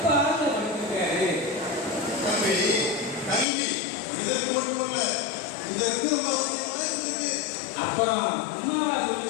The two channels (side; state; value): right; drops out; at 3.5 s